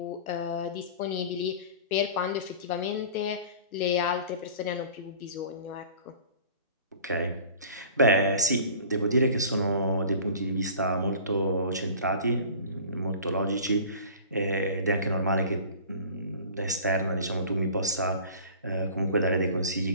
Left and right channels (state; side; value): inverted; both; correlation -0.43